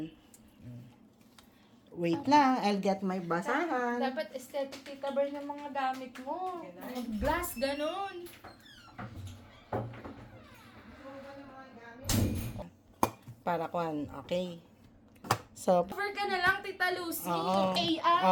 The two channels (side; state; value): both; identical; correlation 1.00